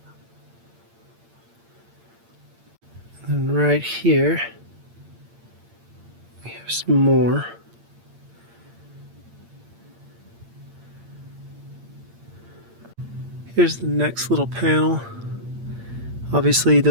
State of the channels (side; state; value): left; late; 8.7 ms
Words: And right here we have some more. Here's the next little panel. Obviously